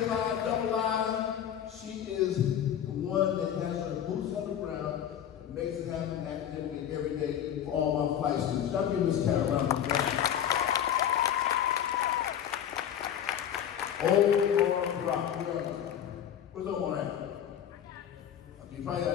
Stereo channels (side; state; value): right; quieter; 9.7 dB